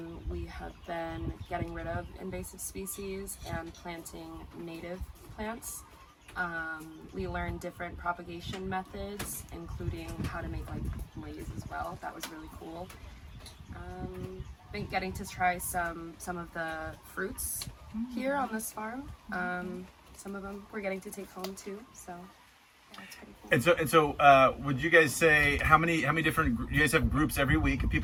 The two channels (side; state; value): both; identical; correlation 1.00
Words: We have been getting rid of invasive species and planting native plants. We learned different propagation methods, including how to make like maize as well. That was really cool. Been getting to try some of the fruits here on this farm. Some of them we're getting to take home too. So yeah, it's pretty cool. And so, would you guys say how many different? You guys have groups every week. If